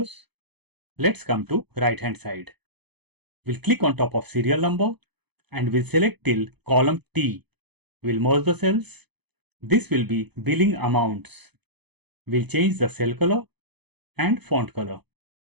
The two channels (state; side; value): late; left; 0.98 ms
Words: Let's come to right hand side. We'll click on top of serial number and we'll select till column T. We'll merge the cells. This will be billing amounts. We'll change the cell color and font color.